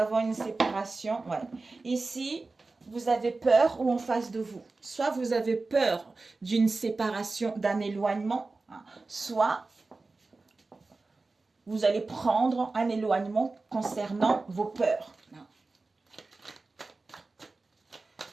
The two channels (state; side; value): quieter; left; 3.6 dB